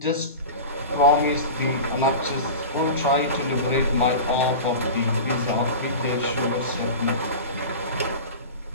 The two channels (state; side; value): inverted; both; correlation -0.30